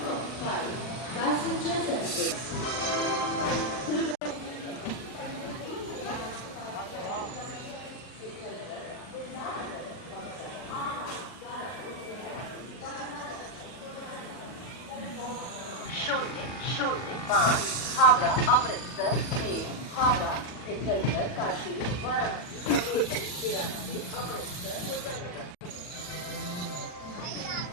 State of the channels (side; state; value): right; late; 40 ms